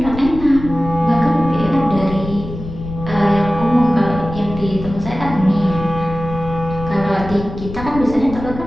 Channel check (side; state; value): left; noise; rumble, 10 dB below the sound